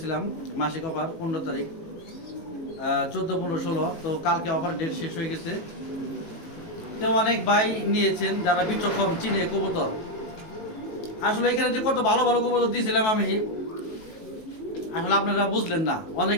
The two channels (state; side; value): late; right; 18 ms